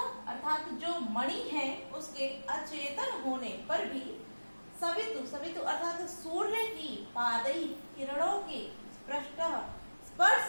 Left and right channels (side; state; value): both; inverted; correlation -1.00